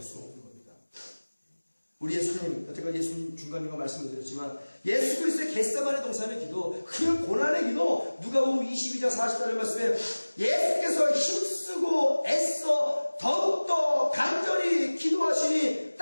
수 없는 겁니다. 우리 예수님, 여태까지 예수님 중간중간 말씀을 드렸지만 예수 그리스도의 겟세마네 동산의 기도, 그 고난의 기도, 누가복음 22장 40절 말씀에 예수께서 힘쓰고 애써 더욱더 간절히 기도하시니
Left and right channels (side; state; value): both; inverted; correlation -1.00